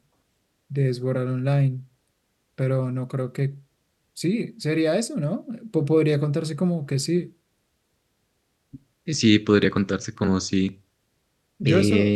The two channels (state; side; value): identical; both; correlation 1.00